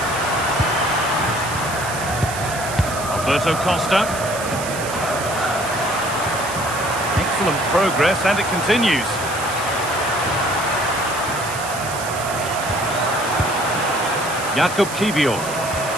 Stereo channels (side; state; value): right; noise; hiss, 10 dB below the sound